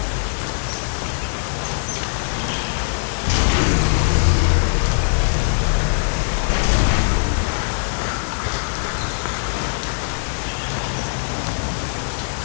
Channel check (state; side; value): silent; right; 65 dB below the other